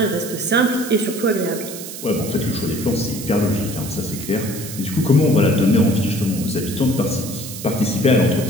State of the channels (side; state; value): right; noise; hiss, 10 dB below the sound